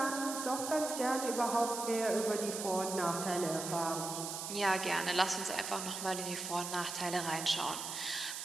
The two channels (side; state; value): right; noise; hiss, 6 dB below the sound